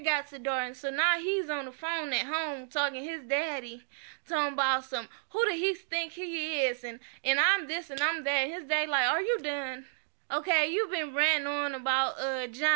got to Darton. So now he's on the phone at home talking his daddy, talking about who do he think he is, and I'm this and I'm that. And his dad like, are you done? Okay, you've been ranting on about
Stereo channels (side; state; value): left; silent; digital silence